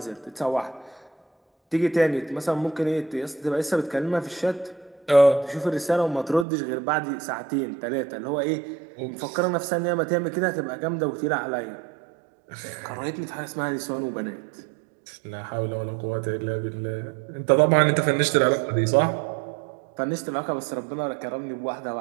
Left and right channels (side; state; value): left; drops out; at 6.5 s